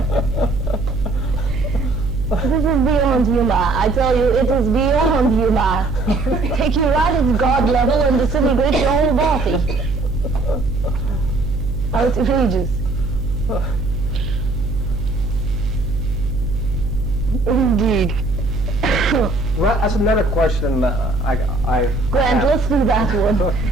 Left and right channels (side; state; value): right; noise; hum, 4 dB below the sound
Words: This is beyond humor. I tell you, it is beyond humor. Take you right at God level and disintegrate your whole body. Outrageous. Indeed. Well, that's another question. Grant, let's do that one.